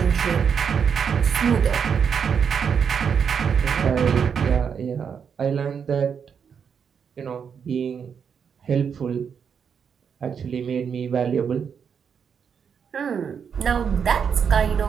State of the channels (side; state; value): left; quieter; 7.0 dB